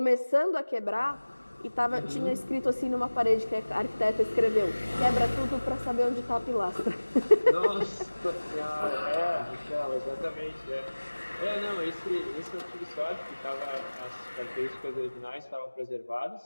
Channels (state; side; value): inverted; both; correlation -1.00